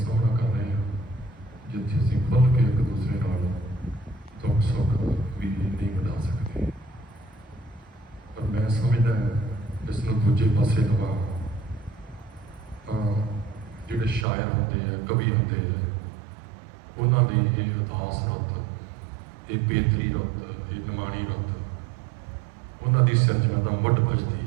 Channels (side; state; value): left; drops out; at 14.2 s